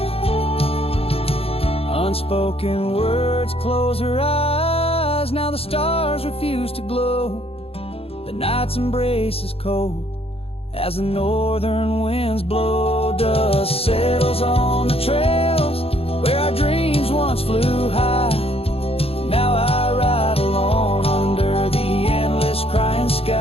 Unspoken words close her eyes. Now the stars refuse to glow. The night's embrace is cold as the northern winds blow. Dust settles on the trails where our dreams once flew high. Now I ride alone under the endless crying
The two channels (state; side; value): late; right; 0.28 ms